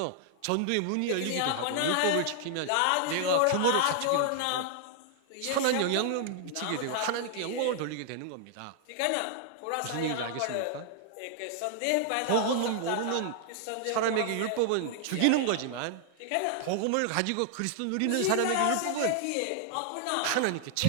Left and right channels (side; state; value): both; different; correlation 0.00